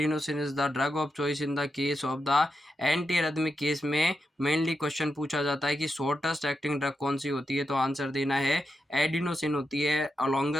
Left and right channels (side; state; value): both; normal; correlation 0.87